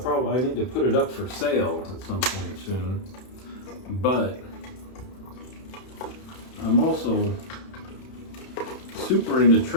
need to put it up for sale at some point soon, but I'm also super into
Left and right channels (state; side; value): late; right; 31 ms